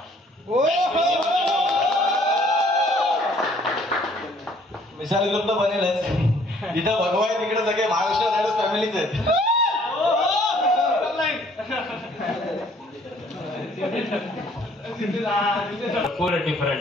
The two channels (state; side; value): normal; both; correlation 0.60